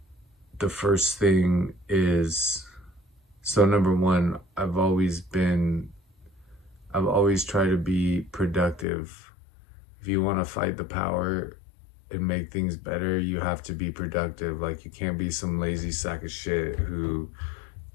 The first thing is, so number one, I've always tried to be productive. If you want to fight the power and make things better, you have to be productive. Like, you can't be some lazy sack of shit who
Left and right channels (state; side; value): drops out; right; at 8.8 s